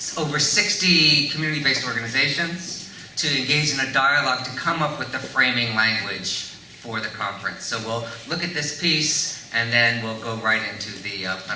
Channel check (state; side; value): identical; both; correlation 1.00